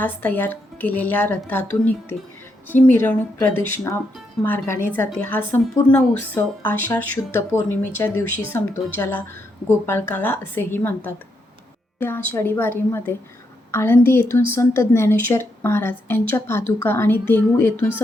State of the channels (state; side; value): normal; both; correlation 0.80